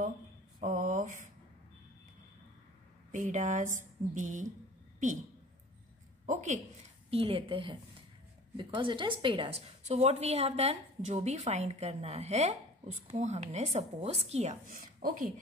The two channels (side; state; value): both; normal; correlation 0.44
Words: of pedas be P. Okay, P लेते हैं because it is pedas. So what we have done, जो भी find करना है उसको हमने सपोज किया. Okay,